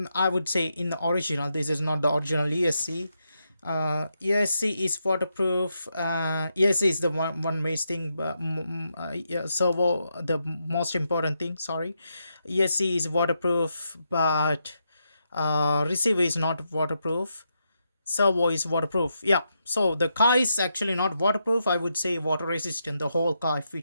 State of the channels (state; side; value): inverted; both; correlation -0.83